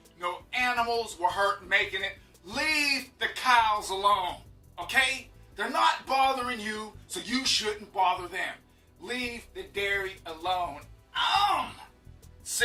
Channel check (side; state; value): both; identical; correlation 1.00